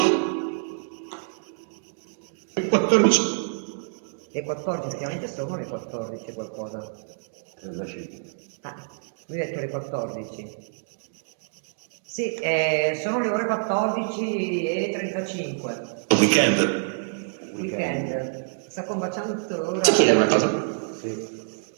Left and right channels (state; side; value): silent; left; digital silence